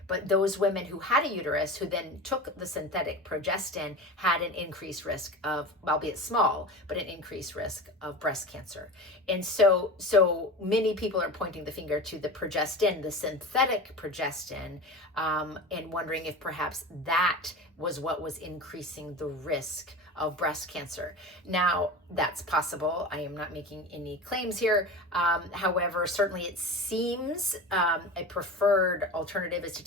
But those women who had a uterus, who then took the synthetic progestin, had an increased risk of, albeit small, but an increased risk of breast cancer. And so many people are pointing the finger to the progestin, the synthetic progestin, and wondering if perhaps that was what was increasing the risk of breast cancer. Now, that's possible. I am not making any claims here. However, certainly it seems a preferred alternative is to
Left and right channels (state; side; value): normal; both; correlation 0.30